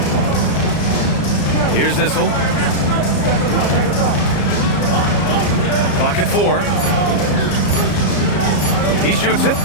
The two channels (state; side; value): late; right; 34 ms